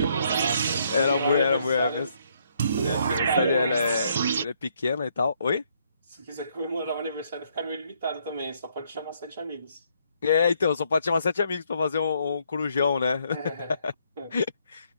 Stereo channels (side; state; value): both; inverted; correlation -0.71